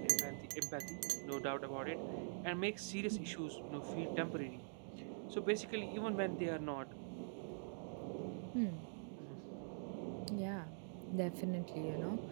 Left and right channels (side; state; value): left; silent; digital silence